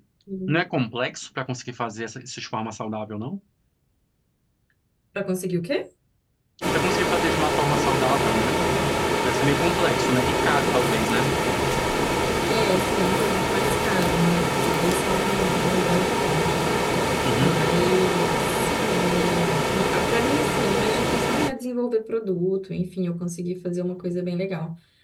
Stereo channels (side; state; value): both; identical; correlation 1.00